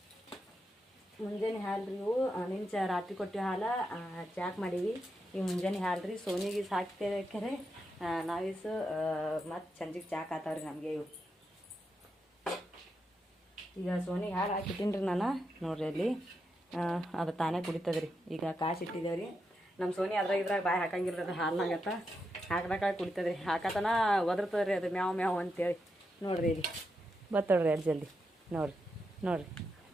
ಮುಂಜಾನೆ ಹಾಲು ರೀ ಇವು. ನಿನ್ನ ರಾತ್ರಿ ಕೊಟ್ಟಿವಿ ಹಾಲು ಚಾಕ್ ಮಾಡೀವಿ. ಈಗ ಮುಂಜಾನೆ ಹಾಲು ರೀ. ಸೋನಿಗೆ ಸಾಕ್ತೇವೆ ನಾವೀಸು ಮತ್ತು ಸಂಜೆಗೆ ಚಾಕ್ ಆತಾವ್ರಿ ನಮಗೆ ಇವು. ಈಗ ಸೋನಿಗೆ ಹಾಲು ಹಾಕಿಟ್ಟಿನಿ ರೀ ನಾನು. ನೋಡ್ರಿ ಅಲ್ಲಿ ಅದು ತಾನೇ ಕುಡಿತದ್ರಿ. ಈಗ ಕಾಸು ಇಟ್ಟಿದ್ದೇವ್ರಿ. ನಮ್ಮ ಸೋನಿ ಇದ್ರಾಗ ಬಾಯಿ ಹಾಕಂಗಿಲ್ಲ. ಅದು ಹಾಲ್ನಾಗತ್ತ ಹಾಕ್ದಾಗ ಕುಡಿತದ್ರಿ. ಹಾಕತನ ಒದರ್ತದ್ರಿ ಅದು ಮ್ಯಾವ್ ಮ್ಯಾವ್ ಅಂತೇಳಿ. ನೋಡ್ರಿ ಇಲ್ಲಿ ಬತ್ತೋಡ್ರಿ ಅಲ್ಲಿ ಜಲ್ದಿ. ನೋಡ್ರಿ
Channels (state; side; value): normal; both; correlation 0.85